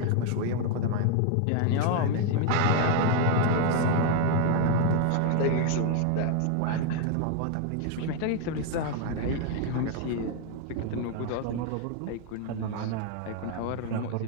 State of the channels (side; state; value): both; different; correlation 0.01